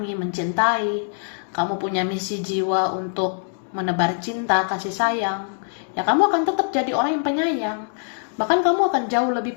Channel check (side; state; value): right; silent; 63 dB below the other